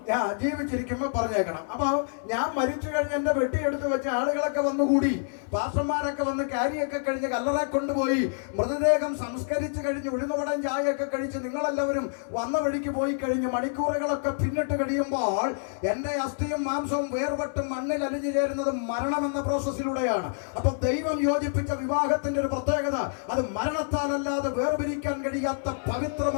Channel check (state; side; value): silent; right; 60 dB below the other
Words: ഞാൻ ജീവിച്ചിരിക്കുമ്പോൾ പറഞ്ഞേക്കണം. അപ്പൊ ഞാൻ മരിച്ചു കഴിഞ്ഞ് എന്റെ വെട്ടിയെടുത്ത് വെച്ച ആളുകളൊക്കെ വന്നുകൂടി, പാസ്റ്റർമാരൊക്കെ വന്ന് കാരിയൊക്കെ കഴിഞ്ഞ് കല്ലറ കൊണ്ടുപോയി മൃതദേഹം സംസ്കരിച്ച് കഴിഞ്ഞ് ഉഴുന്നുവടം ചായയൊക്കെ കഴിച്ച് നിങ്ങളെല്ലാവരും വന്ന വഴിക്ക് പോയി കഴിഞ്ഞ് മണിക്കൂറുകളൊക്കെ പിന്നിട്ട് കഴിയുമ്പോൾ എന്റെ അസ്ഥിയും മാംസവും വേർപെട്ടും മണ്ണിൽ അലിഞ്ഞു ചേരുന്നത് മരണമെന്ന പ്രോസസ്സിലൂടെയാണ്. അപ്പൊ ദൈവം യോജിപ്പിച്ച വിവാഹത്തിന്റെ ഒരു പ്രത്യേകത, അത് മരണത്താലല്ലാതെ വേർപിരിക്കാൻ കഴിയാത്ത